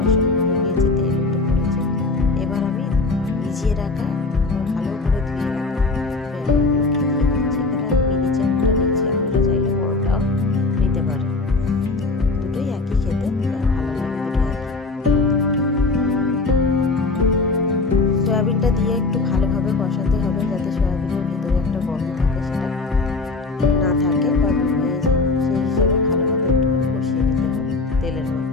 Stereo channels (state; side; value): quieter; right; 3.5 dB